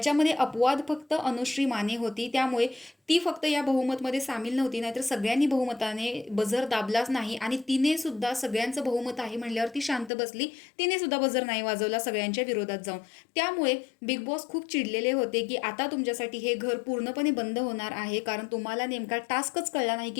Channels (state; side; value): drops out; right; at 10.1 s